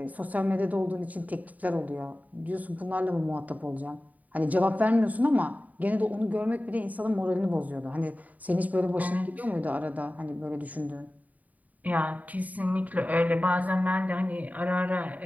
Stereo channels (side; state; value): left; late; 0.074 ms